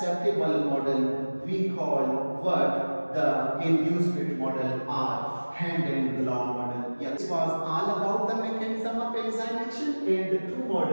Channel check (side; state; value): both; inverted; correlation -1.00